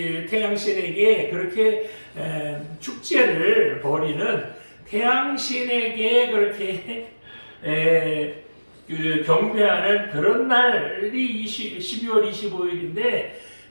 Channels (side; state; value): both; inverted; correlation -1.00